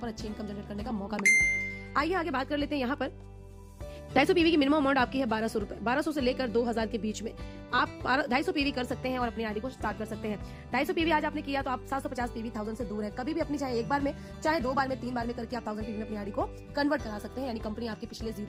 अच्छी इनकम जनरेट करने का मौका मिलता है। आइए आगे बात कर लेते हैं। यहाँ पर 250 PV की मिनिमम अमाउंट आपकी है 1200 रुपए। 1200 से लेकर 2000 के बीच में आप 250 PV कर सकते हैं और अपनी आईडी को स्टार्ट कर सकते हैं। 250 PV आज आपने किया तो आप 750 PV 1000 से दूर है। कभी भी अपनी चाहे एक बार में, चाहे 2 बार में, 3 बार में करके आप 1000 PV में अपनी आईडी को कन्वर्ट करा सकते हैं, यानी कंपनी आपके पिछले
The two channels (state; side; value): identical; both; correlation 1.00